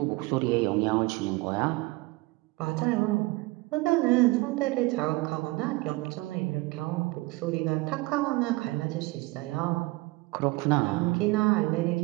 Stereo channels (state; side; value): quieter; left; 22.4 dB